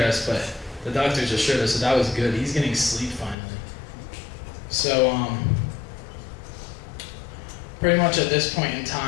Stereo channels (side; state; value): right; drops out; at 3.4 s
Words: but the doctors assured us that was good. He's getting sleep finally. So, pretty much at this point in